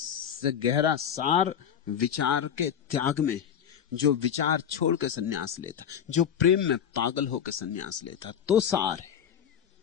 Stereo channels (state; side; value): quieter; right; 8.6 dB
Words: से गहरा सार विचार के त्याग में, जो विचार छोड़ के सन्यास लेता, जो प्रेम में पागल होकर सन्यास लेता, तो सार है।